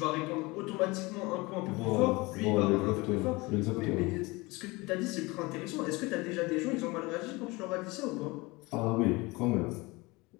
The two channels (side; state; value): right; quieter; 23.7 dB